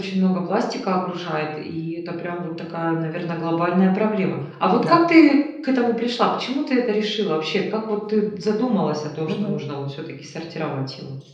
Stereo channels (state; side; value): identical; both; correlation 1.00